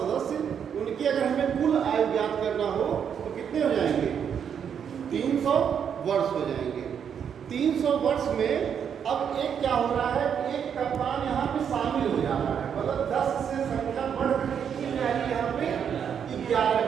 उनकी अगर हमें कुल आयु ज्ञात करना हो तो कितने हो जाएंगे? 300 वर्ष हो जाएंगे। 300 वर्ष में अब एक क्या हो रहा है, एक कप्तान यहाँ पे शामिल हो जा रहा है, मतलब 10 से संख्या बढ़कर कितनी हो जाएगी? यहाँ पे 11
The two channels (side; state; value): left; quieter; 7.9 dB